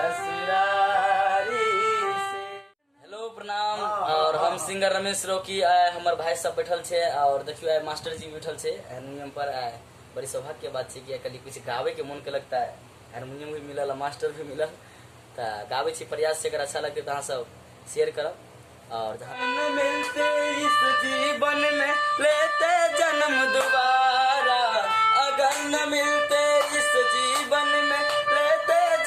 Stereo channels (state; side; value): identical; both; correlation 1.00